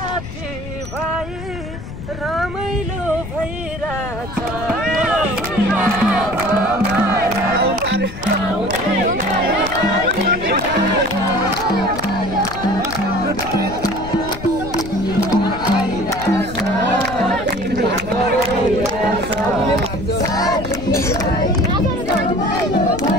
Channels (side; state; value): left; noise; rumble, 11 dB below the sound